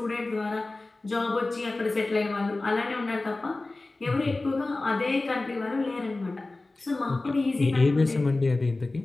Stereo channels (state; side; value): quieter; right; 3.1 dB